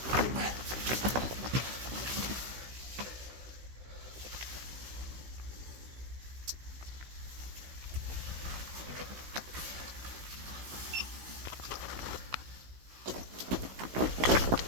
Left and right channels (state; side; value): late; left; 16 ms